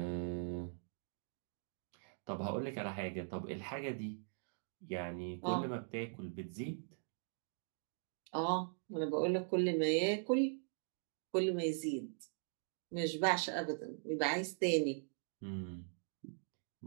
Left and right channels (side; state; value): left; silent; digital silence